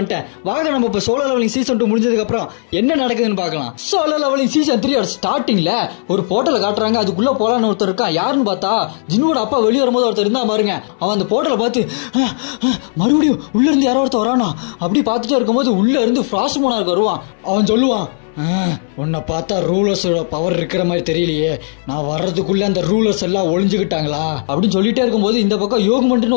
வாங்க நம்ம இப்ப சோலோ லெவலிங் சீசன் 2 முடிஞ்சதுக்கு அப்புறம் என்ன நடக்குதுன்னு பார்க்கலாம். சோலோ லெவலிங் சீசன் 3 ஸ்டார்டிங்ல ஒரு போர்ட்டல காட்டுறாங்க. அதுக்குள்ள போலான்னு ஒருத்தர் இருக்கான். யாருன்னு பார்த்தா ஜின்வோட அப்பா வெளியே வரும்போது ஒருத்தர் இருந்தா பாருங்க. அவன் அந்த போர்ட்டலை பார்த்து மறுபடியும் உள்ள இருந்து யாரோ ஒருத்தர் வரானா அப்படி பார்த்துட்டே இருக்கும்போது உள்ள இருந்து ஃப்ராஸ்ட் மோனார்க் வருவான். அவன் சொல்லுவான், உன்னை பார்த்தா ரூலர்ஸோட பவர் இருக்கிற மாதிரி தெரியலையே, நான் வர்றதுக்குள்ள அந்த ரூலர்ஸ் எல்லாம் ஒளிஞ்சுக்கிட்டாங்களா அப்படின்னு சொல்லிட்டே இருக்கும்போது இந்த பக்கம்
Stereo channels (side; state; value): right; silent; 69 dB below the other